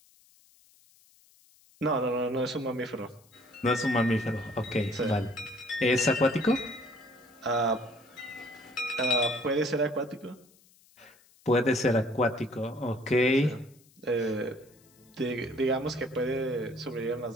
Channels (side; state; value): left; noise; hiss, 30 dB below the sound